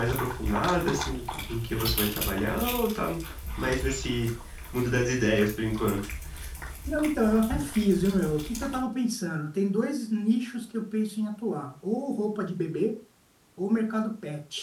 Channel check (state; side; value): identical; both; correlation 1.00